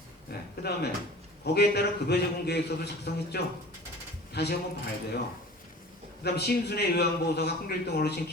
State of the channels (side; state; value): both; normal; correlation 0.41